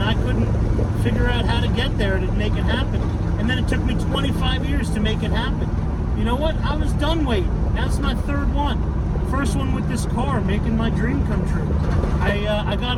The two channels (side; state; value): both; identical; correlation 1.00